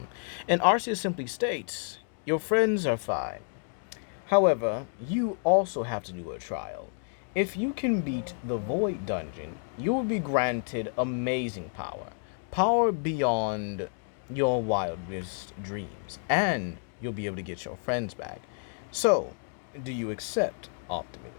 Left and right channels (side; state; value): right; silent; digital silence